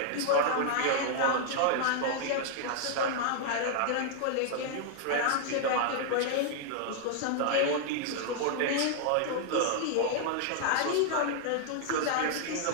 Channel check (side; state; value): both; different; correlation 0.00